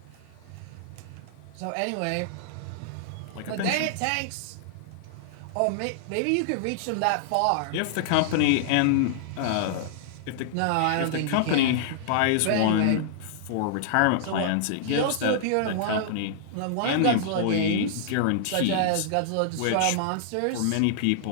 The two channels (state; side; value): different; both; correlation -0.01